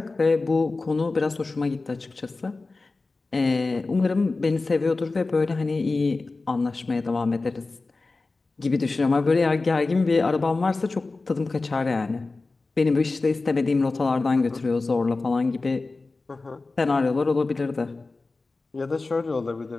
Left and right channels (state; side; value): quieter; right; 3.6 dB